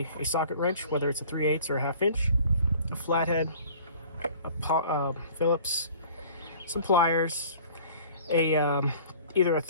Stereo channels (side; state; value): both; inverted; correlation -0.48